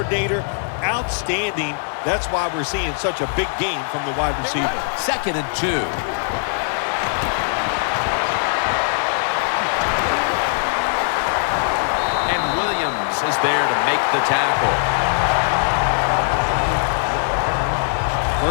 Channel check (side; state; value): right; silent; 65 dB below the other